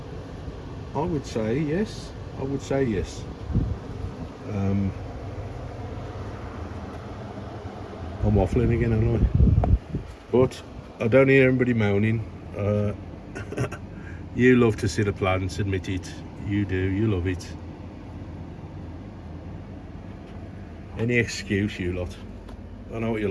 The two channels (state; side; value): identical; both; correlation 1.00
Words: I would say yes. I'm waffling again, aren't I? But I don't hear anybody moaning. You love to see the plants, admit it. You do, you love it. Any excuse, you lot. I know what you